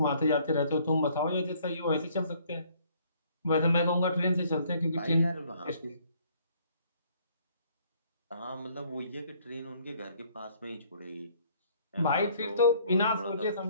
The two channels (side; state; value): both; inverted; correlation -0.62